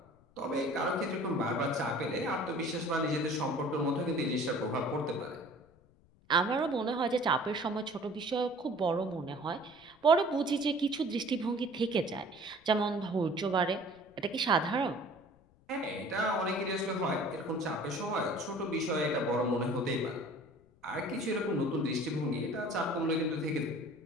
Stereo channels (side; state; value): left; noise; rumble, 30 dB below the sound